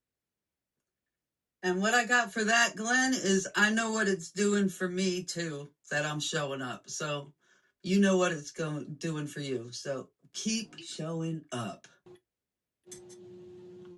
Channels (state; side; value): identical; both; correlation 1.00